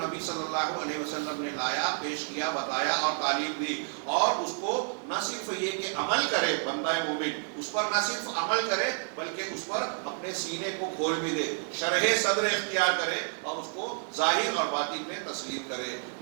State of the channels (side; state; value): left; silent; 58 dB below the other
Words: صلی اللہ علیہ وسلم نے لایا، پیش کیا، بتایا اور تعلیم دی، اور اس کو نہ صرف یہ کہ عمل کرے بندہ مومن، اس پر نہ صرف عمل کرے بلکہ اس پر اپنے سینے کو کھول بھی دے، شرح صدر اختیار کرے اور اس کو ظاہر اور باطن میں تسلیم کرے۔